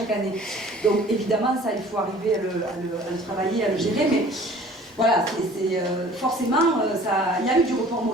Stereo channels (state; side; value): normal; both; correlation 0.49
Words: année. Donc évidemment, ça, il faut arriver à le travailler, à le gérer, mais voilà, forcément, il y a eu du report